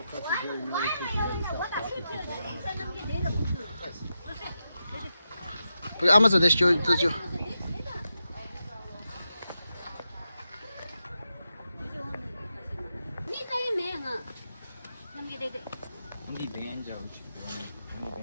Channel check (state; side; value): inverted; both; correlation -0.88